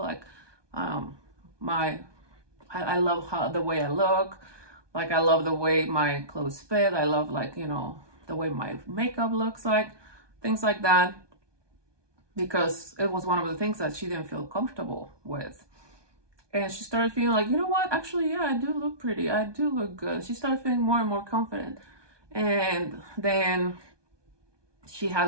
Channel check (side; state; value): left; late; 1.2 ms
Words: Like, I love how the way I look. Like, I love the way my clothes fit. I love, like, you know, the way my makeup looks like, things like that. Because it was one of the things that she didn't feel comfortable with. And she started feeling like, you know what? Actually, yeah, I do look pretty. I do look good. She started feeling more and more confident. And then she